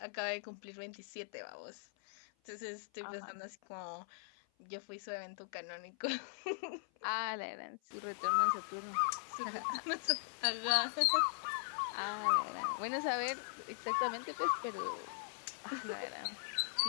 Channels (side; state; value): right; silent; 51 dB below the other